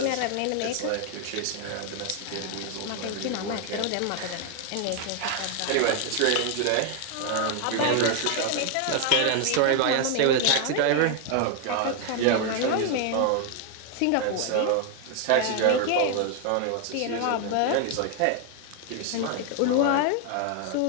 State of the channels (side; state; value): both; different; correlation 0.01